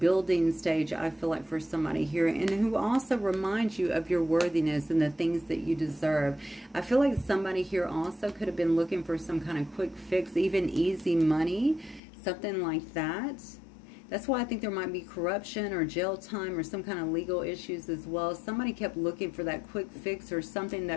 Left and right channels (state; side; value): drops out; right; at 12.0 s